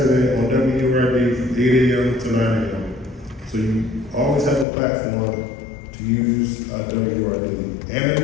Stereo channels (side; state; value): right; drops out; at 4.7 s